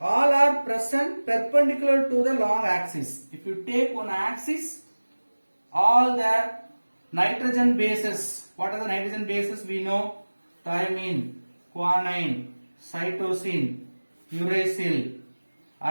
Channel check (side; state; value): both; inverted; correlation -1.00